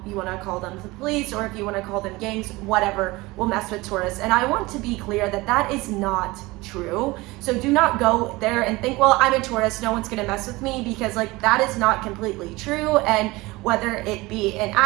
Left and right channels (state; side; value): quieter; left; 21.5 dB